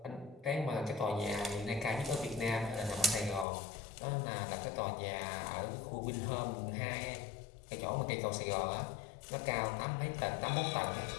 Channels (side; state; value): right; drops out; at 3.5 s